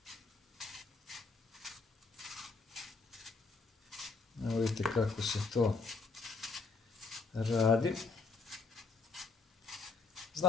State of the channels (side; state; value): right; quieter; 4.7 dB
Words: Evo vidite kako se to radi.